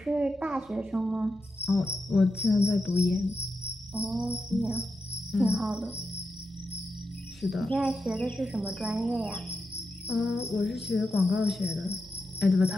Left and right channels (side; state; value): both; normal; correlation 0.87